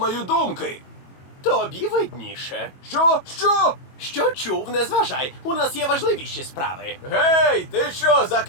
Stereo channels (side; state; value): right; late; 22 ms